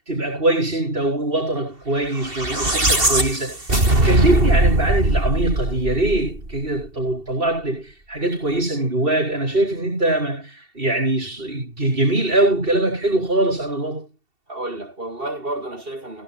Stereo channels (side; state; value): left; late; 2.7 ms